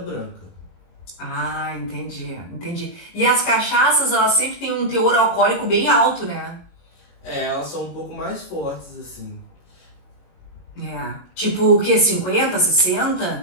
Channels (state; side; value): late; right; 22 ms